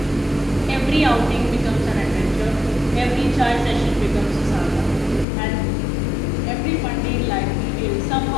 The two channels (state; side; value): drops out; right; at 5.2 s